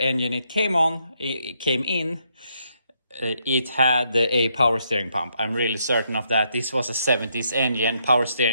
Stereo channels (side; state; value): both; inverted; correlation -0.76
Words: it came in, it had a power steering pump. I'm really certain of that. This was a 70s engine. Power